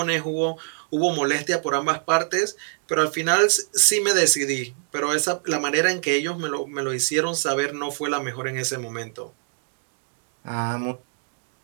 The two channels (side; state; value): left; silent; 62 dB below the other